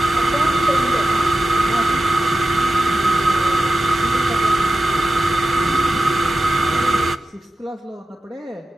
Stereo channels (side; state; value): both; normal; correlation 0.92